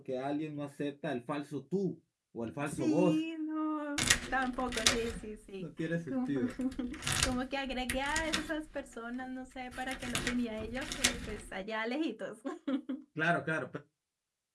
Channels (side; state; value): both; identical; correlation 1.00